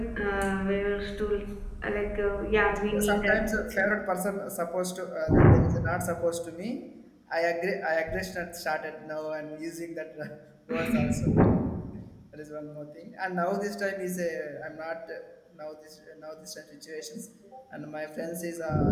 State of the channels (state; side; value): identical; both; correlation 1.00